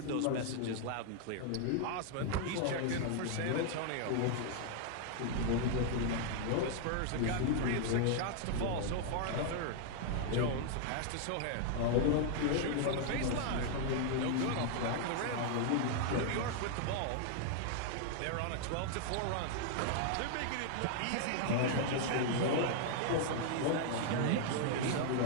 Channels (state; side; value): different; both; correlation 0.00